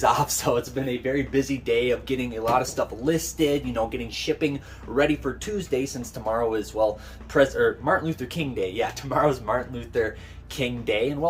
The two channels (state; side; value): identical; both; correlation 1.00